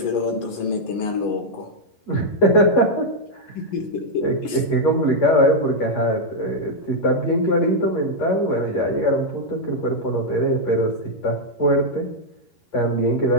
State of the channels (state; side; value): late; right; 11 ms